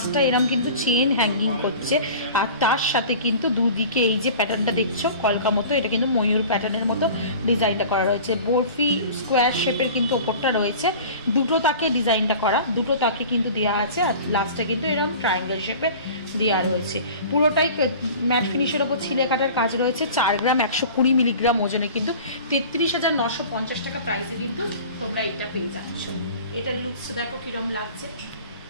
এরকম কিন্তু চেন হ্যাঙ্গিং করছে, আর তার সাথে কিন্তু দুদিকে এই যে প্যাটার্নটা দেখছো কলকা মতো, এটা কিন্তু ময়ূর প্যাটার্নের মতো ডিজাইনটা করা রয়েছে। বরফি স্কোয়ার শেপের কিন্তু ওপরটা রয়েছে, দুটো তাকে ডিজাইনটা করা, দুটো তাকে কিন্তু দেওয়া আছে, আর লাস্টে কিন্তু এরকম ট্রায়াঙ্গেল শেপে দেওয়া রয়েছে। পুরোটাই ম্যাট ফিনিশের ওপর ছিলে কাটার কাজ রয়েছে। 4 গ্রাম 120 মিলিগ্রাম ওজনে কিন্তু 33,950 টাকা প্রাইসে কিন্তু তোমরা এটা পেয়ে যাচ্ছ। এটার লুকস দেখো কিরকম লাগছে।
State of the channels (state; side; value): inverted; both; correlation -0.41